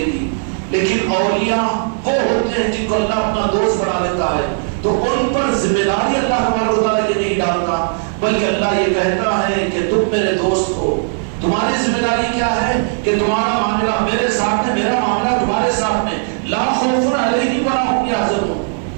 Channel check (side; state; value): left; silent; digital silence